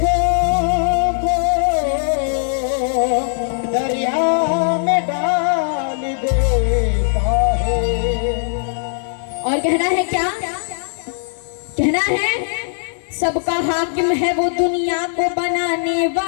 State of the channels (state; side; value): silent; right; 59 dB below the other